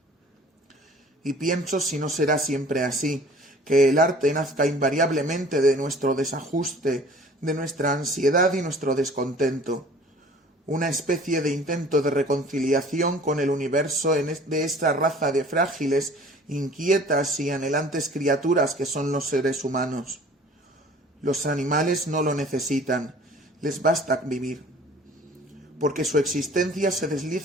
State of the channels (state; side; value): normal; both; correlation 0.49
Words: Y pienso si no será siempre así, que el arte nazca invariablemente de nuestro desajuste, de nuestra ansiedad y nuestro descontento. Una especie de intento de reconciliación con el universo de esta raza de frágiles, inquietas y anhelantes criaturas que son los seres humanos. Los animales no lo necesitan, les basta vivir, porque su existencia se